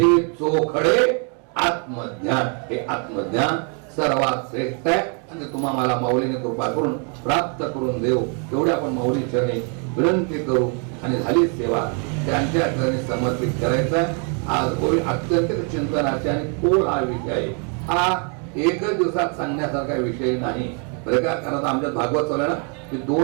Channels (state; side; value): quieter; left; 38.8 dB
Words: चोखडे आत्मज्ञान. हे आत्मज्ञान सर्वात श्रेष्ठ आहे आणि तुम्हाला मला माऊलीने कृपा करून प्राप्त करून देऊ. तेवढ्या आपण माऊली चरणी विनंती करू आणि झाली सेवा त्यांच्या चरणी समर्पित करायचा. आज होळी अत्यंत चिंतनाचे आणि खोल हा विषय आहे. हा एकच दिवसात सांगण्यासारखा विषय नाही बरं का. कारण आमच्यात भागवत चालू आहे ना, की